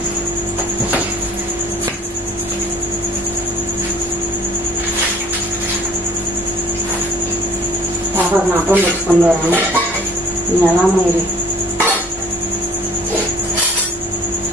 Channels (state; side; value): normal; both; correlation 0.51